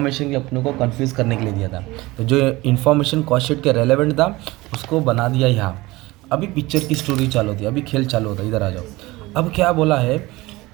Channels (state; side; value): quieter; left; 20.5 dB